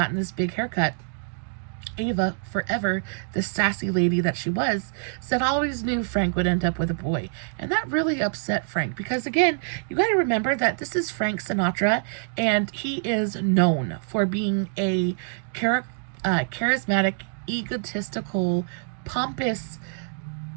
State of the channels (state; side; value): silent; left; digital silence